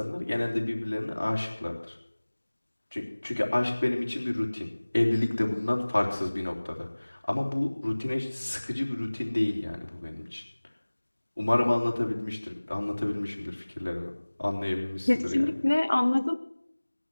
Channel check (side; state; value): both; inverted; correlation -1.00